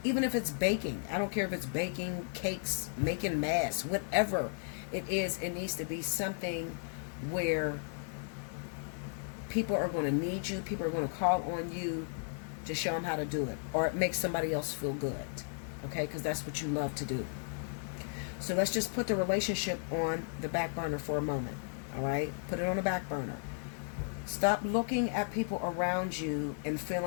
even if it's baking, I don't care if it's baking cakes, making masks, whatever it is, it needs to be something where people are going to need you, people are going to call on you to show them how to do it, or it makes somebody else feel good, okay, because that's what you love to do. So let's just put the relationship on the back burner for a moment, all right? Put it on the back burner. Stop looking at people around you and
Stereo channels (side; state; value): right; silent; 55 dB below the other